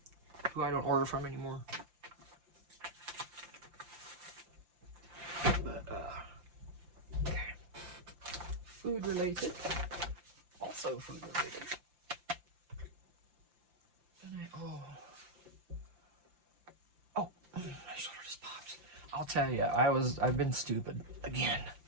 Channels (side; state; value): left; late; 5.8 ms